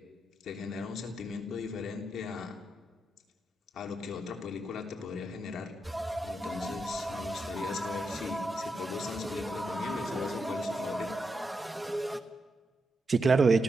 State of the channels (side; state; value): both; normal; correlation 0.85